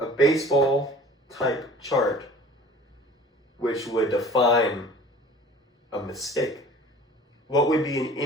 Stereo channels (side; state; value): both; normal; correlation 0.46